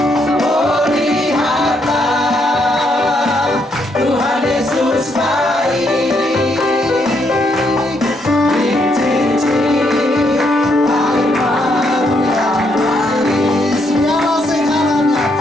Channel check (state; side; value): normal; both; correlation 0.75